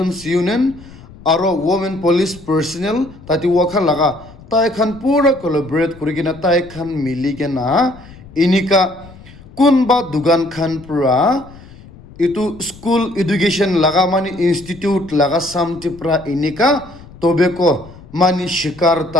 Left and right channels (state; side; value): noise; left; rumble, 20 dB below the sound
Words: यूनियन आरो वुमेन पुलिस पर्सनल ताती वाखा लगा ताई खन पूरा कोलैबोरेट करिगिना ताई खन मिलिगिना इनिका कुनबा दुगान खन पुरा itu school education laga mani institute laga samti pra inika tobeko mani shikar